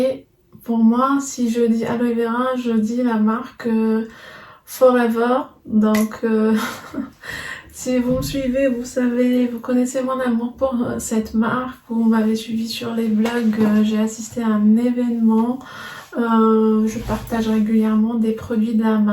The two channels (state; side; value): identical; both; correlation 1.00